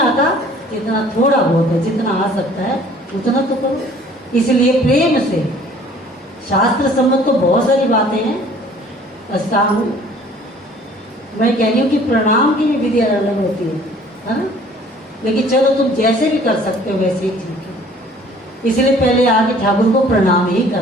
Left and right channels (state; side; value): normal; both; correlation 0.53